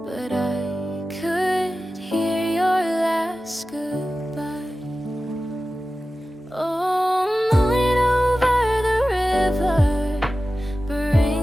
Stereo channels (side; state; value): both; normal; correlation 0.95